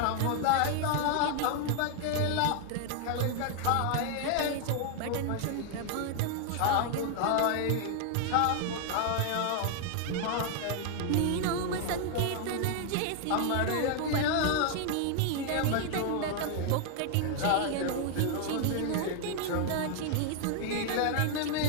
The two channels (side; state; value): both; different; correlation 0.00